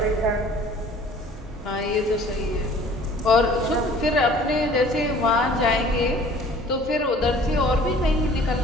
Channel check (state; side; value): normal; both; correlation 0.51